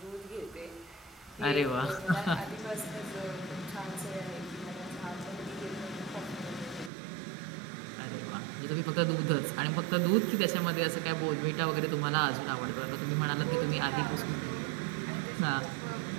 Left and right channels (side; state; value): left; drops out; at 6.9 s